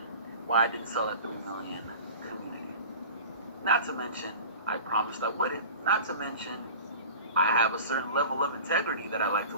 why I didn't sell at 3 million, community. Not to mention, I promised I wouldn't. Not to mention, I have a certain level of integrity that I like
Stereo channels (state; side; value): inverted; both; correlation -0.38